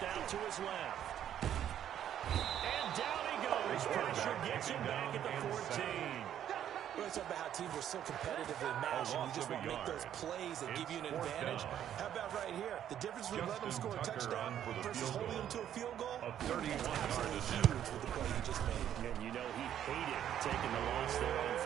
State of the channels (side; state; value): left; quieter; 10.4 dB